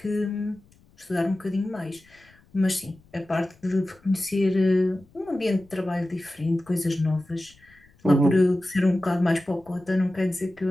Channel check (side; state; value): left; noise; rumble, 30 dB below the sound